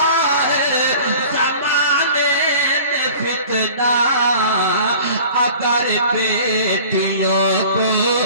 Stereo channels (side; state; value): both; inverted; correlation -0.44